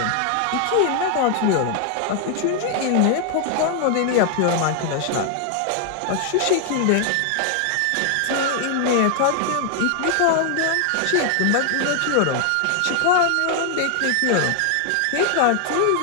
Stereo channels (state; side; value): different; both; correlation 0.00